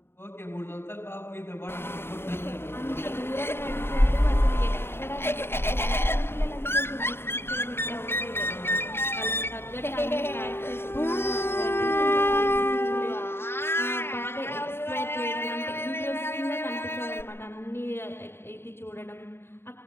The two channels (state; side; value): late; right; 0.11 ms